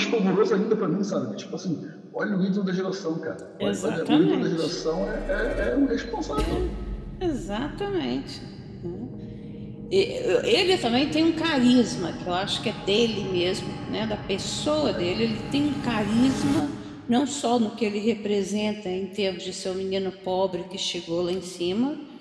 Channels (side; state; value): both; identical; correlation 1.00